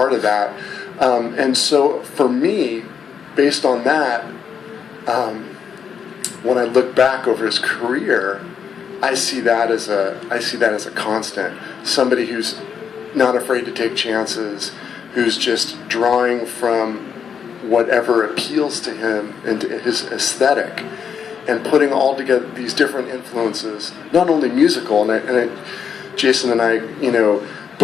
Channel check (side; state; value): right; quieter; 7.2 dB